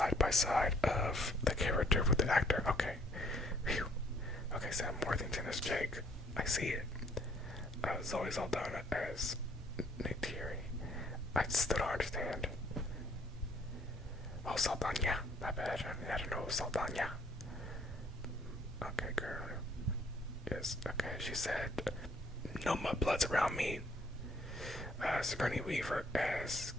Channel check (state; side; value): normal; both; correlation 0.63